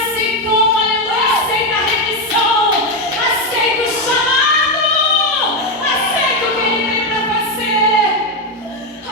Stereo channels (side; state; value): both; normal; correlation 0.07